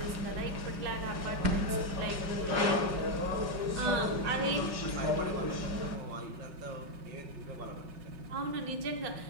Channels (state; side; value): late; left; 5.4 ms